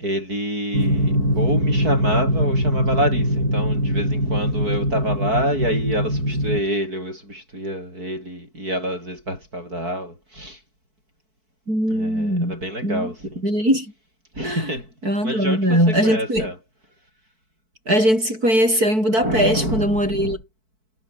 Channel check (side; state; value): left; late; 4.6 ms